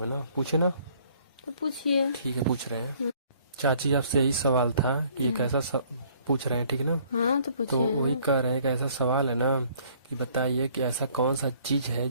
है ना, पूछे ना। तो पूछिए। ठीक है, पूछ रहे हैं। चाची, आपसे यही सवाल था कि एक ऐसा पूछ रहे हैं, ठीक है ना? हाँ तो तो वही पूछिए। कह रहे हैं कि ऐसा सवाल है ना कि बताइए कि ऐसा कौन सा चीज है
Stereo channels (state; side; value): inverted; both; correlation -0.60